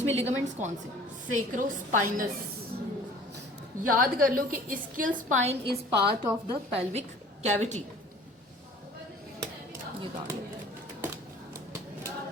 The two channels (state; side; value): normal; both; correlation 0.48